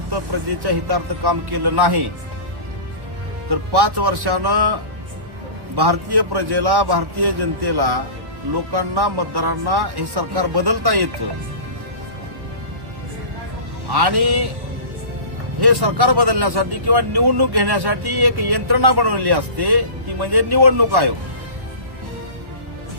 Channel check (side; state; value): left; late; 1.1 ms